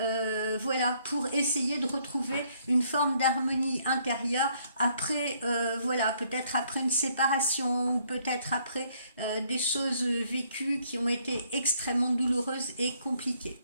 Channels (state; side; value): inverted; both; correlation -0.67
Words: Voilà, pour essayer de retrouver une forme d'harmonie intérieure après, voilà, peut-être après une séparation ou peut-être après des choses vécues qui ont été extrêmement douloureuses et compliquées.